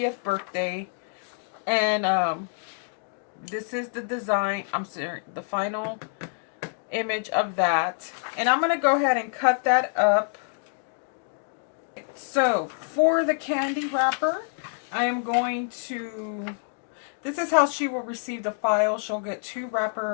birthday. And this is the design. I'm sorry, the final image of that. And I'm going to go ahead and cut that up. So for the candy wrapper, I am going to... This is how she will receive the file. She'll get 2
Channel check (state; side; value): silent; right; 60 dB below the other